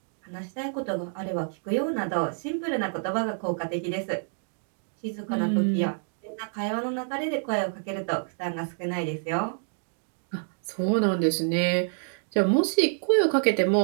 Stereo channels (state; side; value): silent; left; digital silence